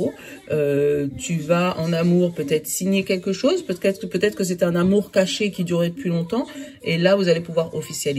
tu vas en amour peut-être signer quelque chose, peut-être que c'est un amour caché qui durait depuis longtemps, et là vous allez pouvoir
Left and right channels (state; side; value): identical; both; correlation 1.00